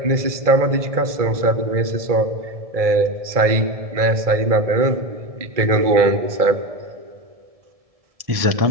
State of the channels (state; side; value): late; left; 1.7 ms